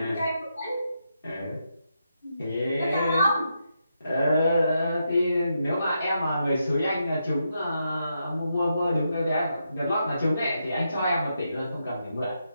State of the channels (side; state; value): both; inverted; correlation -0.83